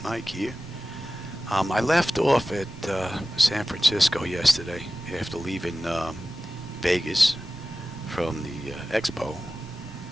Mike here. I left off at San Francisco yesterday after leaving Vegas from the expo.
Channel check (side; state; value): both; normal; correlation 0.95